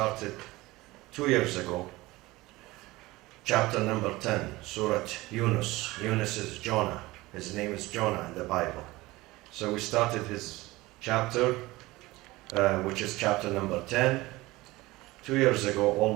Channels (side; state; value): left; quieter; 19.9 dB